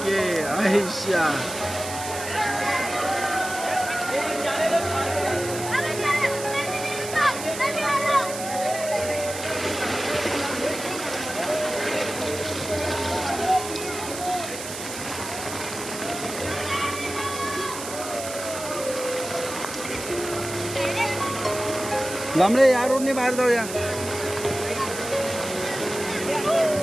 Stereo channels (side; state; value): right; noise; hiss, 9 dB below the sound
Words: आयशा. लांबळे या रोडने बाहेर जाऊया.